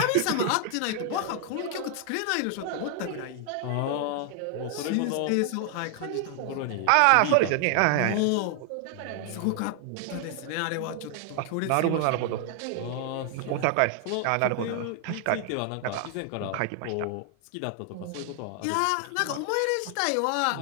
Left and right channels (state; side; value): different; both; correlation 0.00